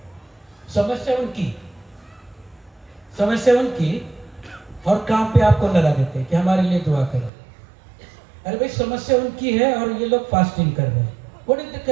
समस्या उनकी और काम पे आपको लगा देते हैं कि हमारे लिए दुआ करो। अरे भाई, समस्या उनकी है और ये लोग फास्टिंग कर रहे हैं। What is the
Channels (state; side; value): drops out; left; at 7.3 s